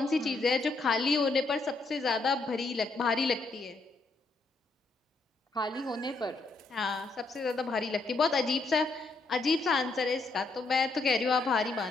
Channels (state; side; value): quieter; right; 3.6 dB